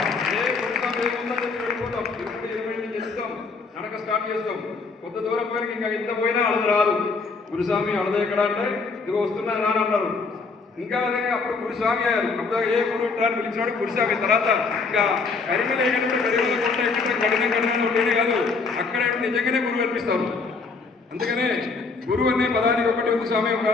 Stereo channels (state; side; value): quieter; right; 4.4 dB